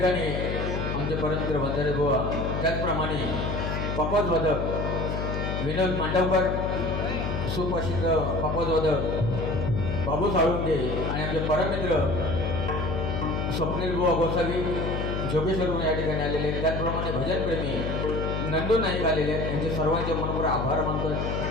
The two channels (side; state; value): left; noise; hum, 2 dB below the sound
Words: आमचे परममित्र वंजारे बुवा, त्याचप्रमाणे पकवाजवादक विनोद मांडवकर, सुप्रसिद्ध पकवाजवादक बाबू साळुंके आणि आमचे परममित्र स्वप्नील बुवा गोसावी जोगेश्वरून या ठिकाणी आलेले आहेत. त्याचप्रमाणे भजनप्रेमी नंदू नाईक आलेले आहेत. यांचे सर्वांचे मनपूर्वक आभार मानतो.